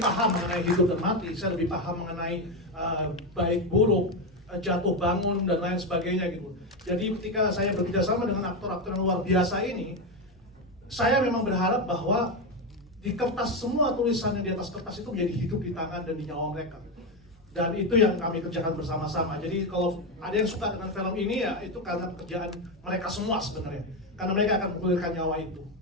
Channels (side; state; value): both; normal; correlation 0.11